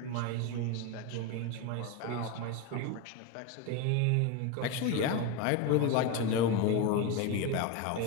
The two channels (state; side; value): different; both; correlation 0.04